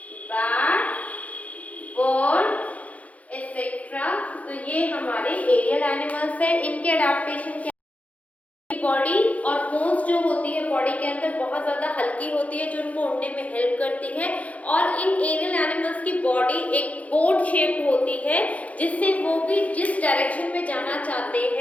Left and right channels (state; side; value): late; right; 0.068 ms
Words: बैट, बर्ड एक्सेट्रा। तो ये हमारे एरियल एनिमल्स है। इनके अडेप्टेशन बॉडी और बोन्स जो होती है बॉडी के अंदर बहुत ज़्यादा हल्की होती है, जो उनको उड़ने में हेल्प करती है। और इन एरियल एनिमल्स की बॉडी एक बोट शेप्ड होती है, जिससे वो भी जिस डायरेक्शन में जाना चाहते